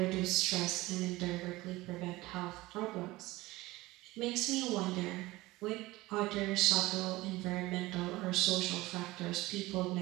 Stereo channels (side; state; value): left; quieter; 19.4 dB